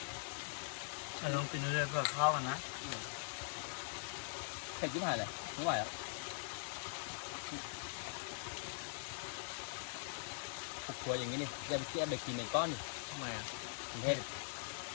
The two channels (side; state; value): right; silent; digital silence